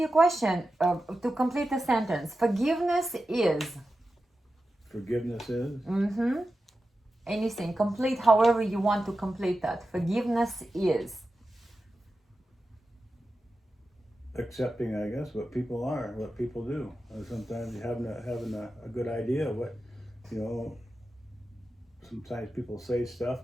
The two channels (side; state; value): both; normal; correlation 0.92